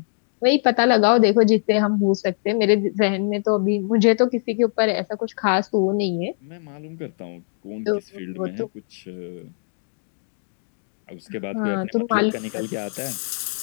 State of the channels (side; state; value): right; silent; 64 dB below the other